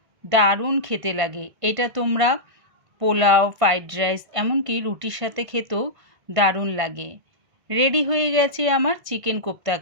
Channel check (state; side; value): late; left; 1.6 ms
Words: দারুণ খেতে লাগে। এটা তোমরা পোলাও, ফ্রাইড রাইস এমনকি রুটির সাথে খেতেও দারুণ লাগে। রেডি হয়ে গেছে আমার চিকেন কোপ্তা